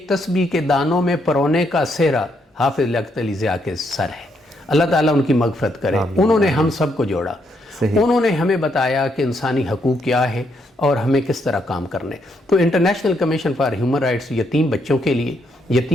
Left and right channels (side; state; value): both; normal; correlation 0.75